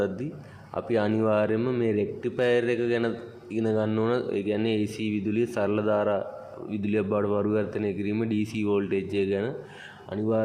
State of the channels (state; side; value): identical; both; correlation 1.00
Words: අපි අනිවාර්යයෙන්ම මේ රෙක්ටිෆයර් එක ගැන ඉගෙන ගන්න ඕන. ඒ කියන්නේ AC විදුලිය සරල ධාරා විදුලියක් බවට පරිවර්තනය කිරීම DC වෝල්ටේජ් එක ගැන